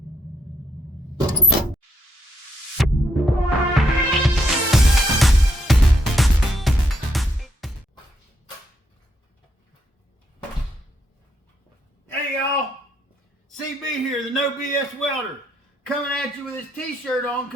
Hey y'all, CB here, the No BS Welder, coming at you with this t-shirt on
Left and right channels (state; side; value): normal; both; correlation 0.75